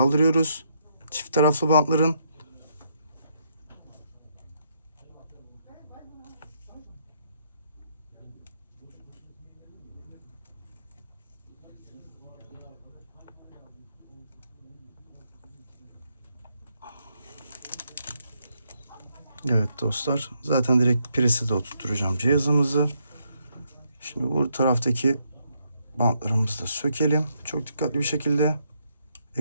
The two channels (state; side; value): inverted; both; correlation -0.76